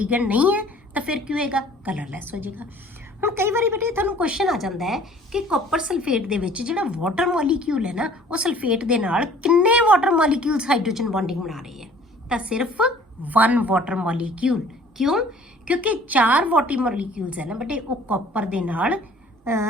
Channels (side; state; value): both; normal; correlation 0.52